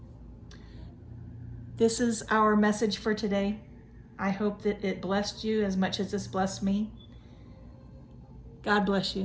This is our message for today. I hope that it blessed you as much as it's blessed me. God bless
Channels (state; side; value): identical; both; correlation 1.00